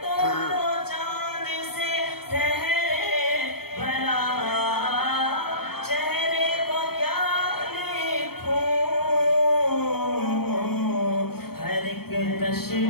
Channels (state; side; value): late; right; 0.95 ms